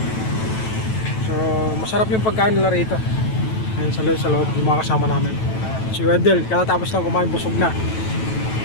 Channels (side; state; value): right; late; 9.1 ms